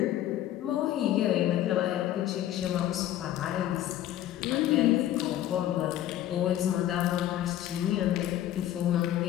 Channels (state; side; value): quieter; right; 12.6 dB